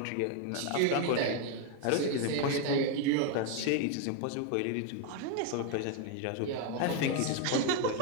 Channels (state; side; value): different; both; correlation 0.01